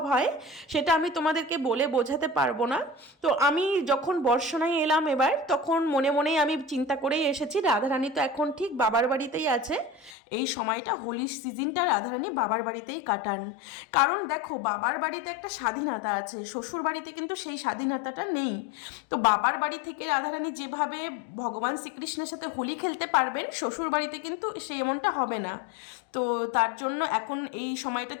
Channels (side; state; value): right; drops out; at 10.2 s